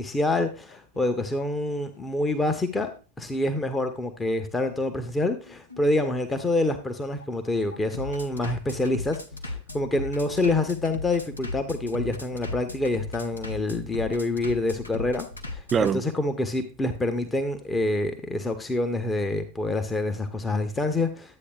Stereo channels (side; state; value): both; normal; correlation 0.64